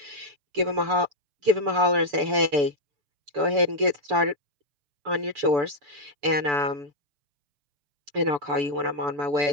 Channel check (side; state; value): left; late; 6.9 ms